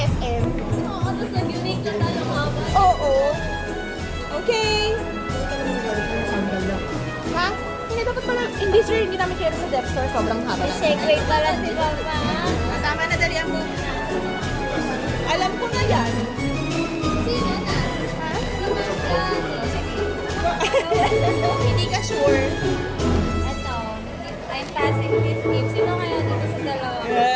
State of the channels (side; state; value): both; identical; correlation 1.00